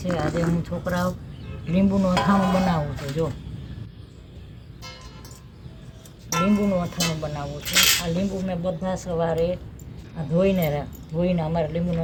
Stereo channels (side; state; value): both; identical; correlation 1.00